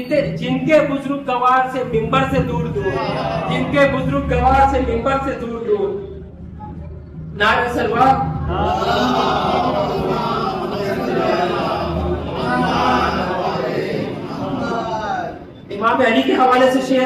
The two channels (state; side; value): identical; both; correlation 1.00